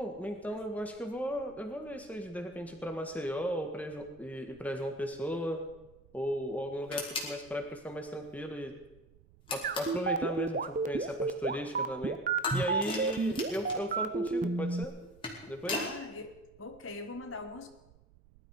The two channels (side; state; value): right; noise; rumble, 25 dB below the sound